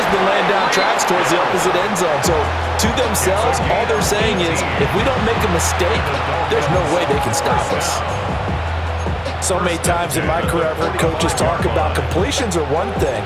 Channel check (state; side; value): identical; both; correlation 1.00